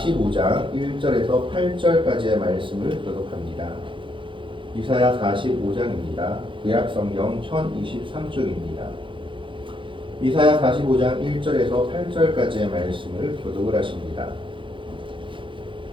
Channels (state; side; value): late; left; 0.25 ms